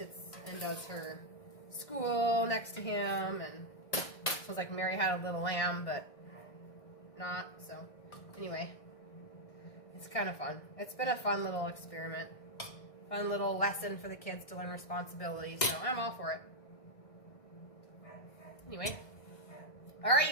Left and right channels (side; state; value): right; late; 1.6 ms